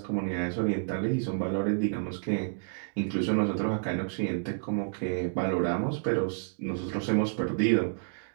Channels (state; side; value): silent; left; digital silence